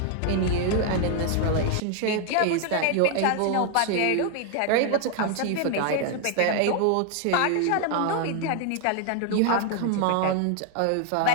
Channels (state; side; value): different; both; correlation 0.00